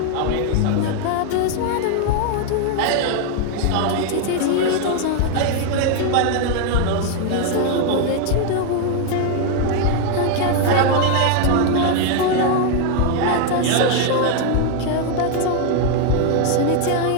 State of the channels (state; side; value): different; both; correlation 0.01